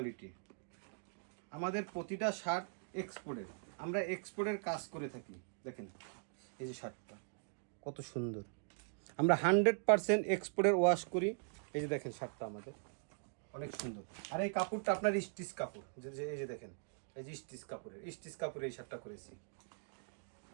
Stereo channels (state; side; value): silent; left; digital silence